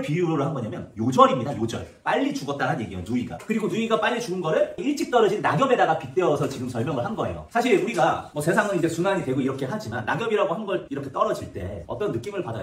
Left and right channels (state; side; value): identical; both; correlation 1.00